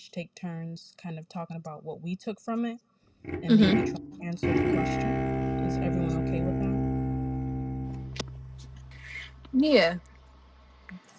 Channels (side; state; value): both; identical; correlation 1.00